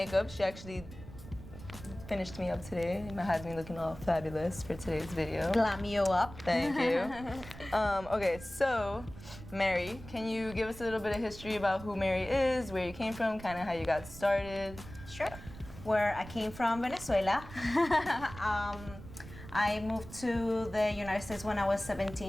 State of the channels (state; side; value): noise; right; rumble, 15 dB below the sound